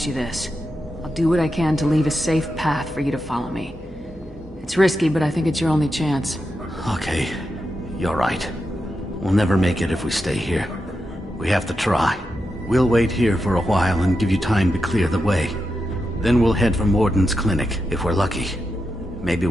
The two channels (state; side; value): normal; both; correlation 0.87